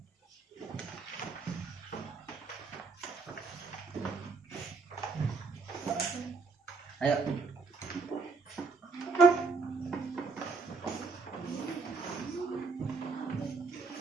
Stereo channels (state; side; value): quieter; left; 4.4 dB